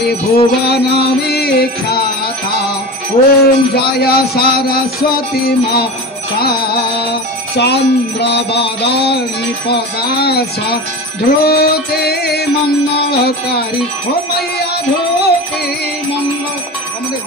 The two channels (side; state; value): both; normal; correlation 0.29